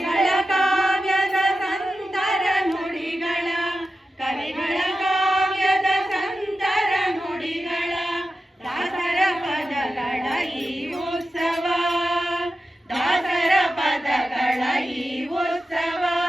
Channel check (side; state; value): both; normal; correlation 0.92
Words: ಕಾವ್ಯದ ಸಂತರ ನುಡಿಗಳ ಕವಿಗಳ ಕಾವ್ಯದ ಸಂತರ ನುಡಿಗಳ ದಾಸರ ಪದಗಳ ಈ ಉತ್ಸವ ದಾಸರ ಪದಗಳ ಈ ಉತ್ಸವ